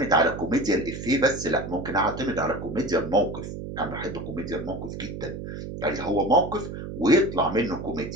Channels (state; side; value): noise; right; hum, 8 dB below the sound